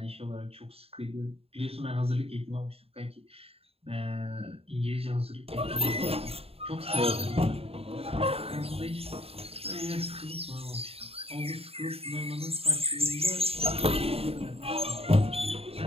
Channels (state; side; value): late; left; 0.28 ms